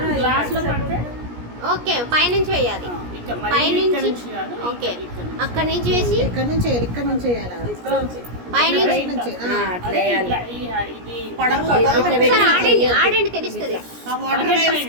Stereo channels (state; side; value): late; left; 17 ms